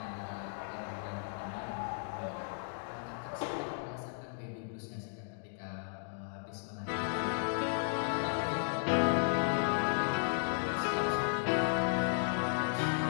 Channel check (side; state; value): right; silent; digital silence